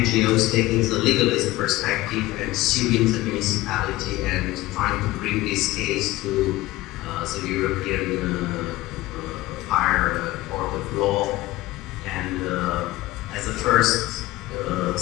taking the legalist perspective and suing the municipality and trying to bring this case to the European Higher Court of Law. And as a first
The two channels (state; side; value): quieter; right; 18.0 dB